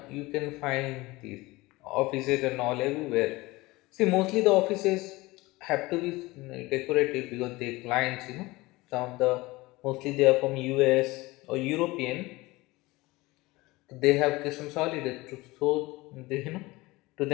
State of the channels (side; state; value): right; quieter; 21.2 dB